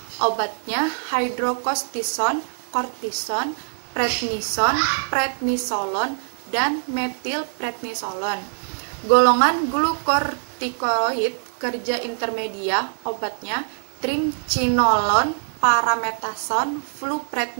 Obatnya hidrokortison, kortison, prednisolon, dan metilprednisolon. Golongan glukokortikoid kerja intermedia, obatnya triamcinolone, parametasone,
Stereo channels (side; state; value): left; silent; 59 dB below the other